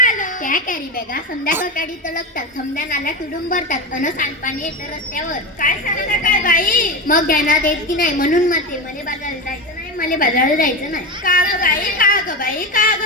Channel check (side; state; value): both; normal; correlation 0.18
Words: त्या कॅरी बॅगा संध्याकाळी तळकतात, समध्या नाल्या तुडून भरतात अन सांडपाणी येतं रस्त्यावर. काय सांगता काय बाई? मग ध्यानात येत की नाही? म्हणून म्हणते मला बाजाराला जायचं नाही, मला बाजाराला जायचं नाही. का ग बाई का ग बाई का